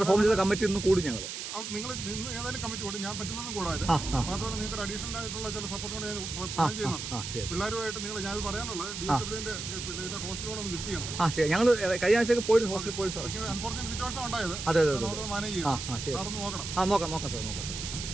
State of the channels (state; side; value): noise; right; hiss, 6 dB below the sound